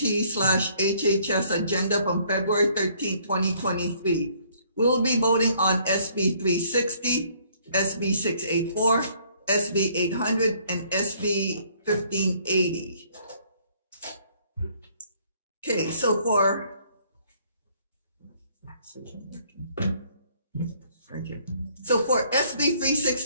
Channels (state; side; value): inverted; both; correlation -0.63